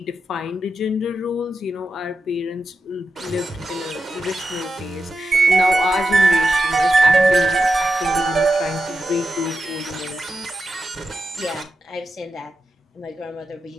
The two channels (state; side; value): normal; both; correlation 0.89